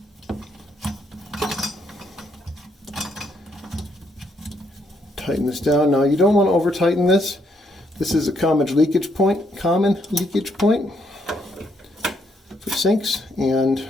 Tighten this down. Now you don't want to over tighten this. This is a common leakage point for sinks, and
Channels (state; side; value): normal; both; correlation 0.74